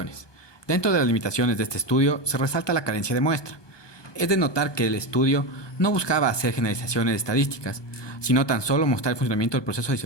Dentro de las limitaciones de este estudio se resalta la carencia de muestra. Es de notar que el estudio no buscaba hacer generalizaciones estadísticas, sino tan solo mostrar el funcionamiento del proceso de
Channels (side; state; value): right; late; 1.2 ms